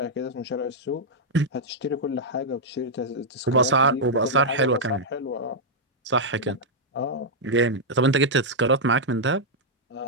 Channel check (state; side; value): normal; both; correlation -0.05